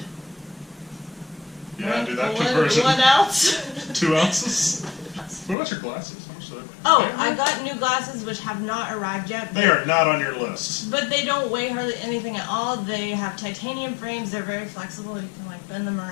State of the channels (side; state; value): right; drops out; at 5.6 s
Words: Yeah, do that conversion. 1 ounce. 2 ounces? What about your glasses? How much do they weigh? Oh, I got new glasses which have not arrived yet. They are not on your list. But they don't weigh hardly anything at all. They have titanium frames. They're very flexible. You can like bend them